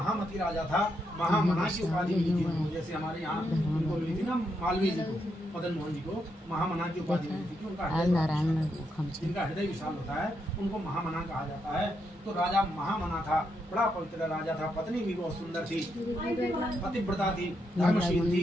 राजा था, महामना की उपाधि मिली थी उनको। जैसे हमारे यहाँ उनको मिली थी ना मालवीय जी को, मदन मोहन जी को महामना की उपाधि मिली थी। इनका हृदय विशाल होता है, उनको महामना कहा जाता है। तो राजा महामना था, बड़ा पवित्र राजा था, पत्नी भी बहुत सुंदर थी, पतिव्रता थी, धर्मशील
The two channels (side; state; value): both; normal; correlation 0.80